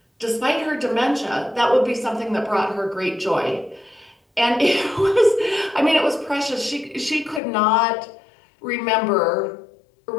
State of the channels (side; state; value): right; drops out; at 7.4 s